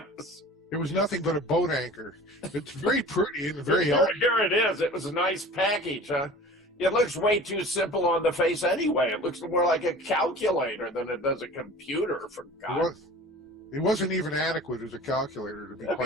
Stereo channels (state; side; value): normal; both; correlation 0.41